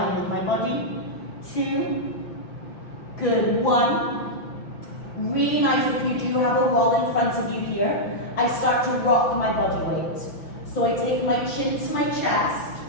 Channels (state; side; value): late; right; 5.9 ms